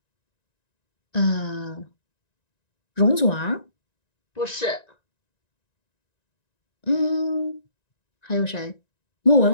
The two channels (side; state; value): right; late; 1.9 ms